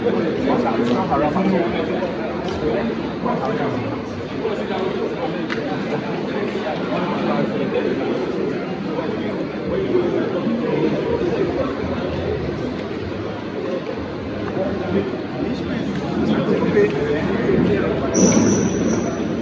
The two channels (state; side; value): identical; both; correlation 1.00